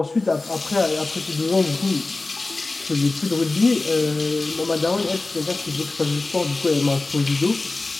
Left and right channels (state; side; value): quieter; right; 3.3 dB